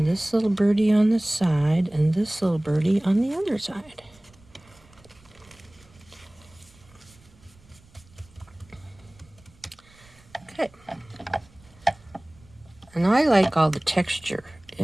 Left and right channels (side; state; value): right; noise; rumble, 27 dB below the sound